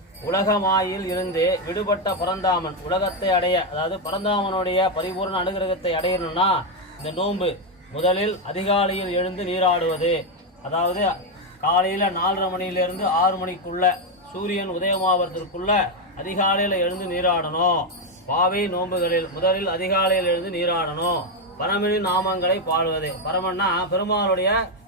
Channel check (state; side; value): normal; both; correlation 0.05